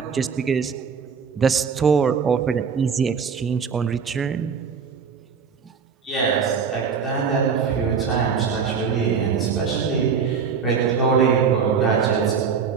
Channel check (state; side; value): quieter; left; 6.1 dB